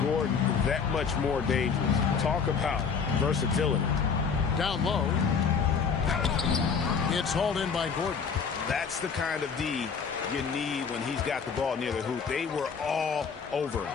Gordon that much more dangerous. Talk about versatility. Down low. It's hauled in by Gordon. That's the kind of D you need when he's got the ball near the hoop. They were all over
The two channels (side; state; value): right; quieter; 6.0 dB